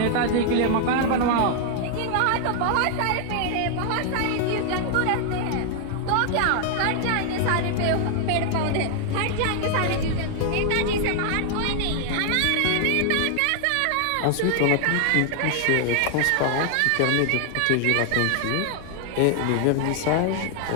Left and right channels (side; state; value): both; different; correlation 0.00